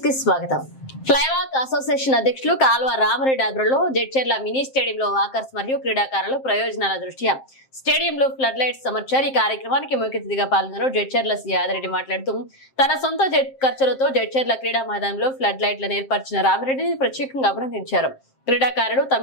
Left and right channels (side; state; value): right; late; 7.6 ms